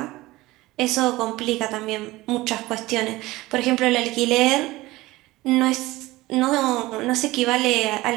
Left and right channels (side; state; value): left; quieter; 19.0 dB